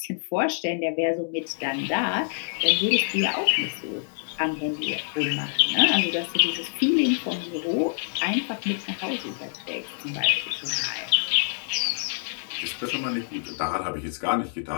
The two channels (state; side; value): silent; right; 61 dB below the other